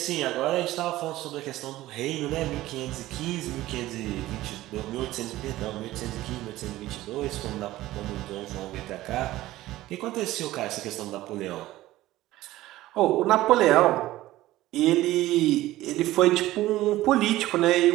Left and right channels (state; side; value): quieter; left; 16.3 dB